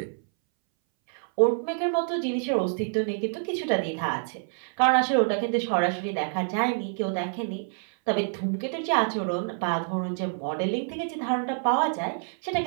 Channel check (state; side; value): silent; left; 60 dB below the other